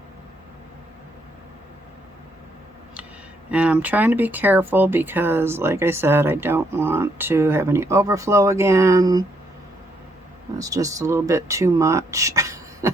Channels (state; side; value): normal; both; correlation 0.74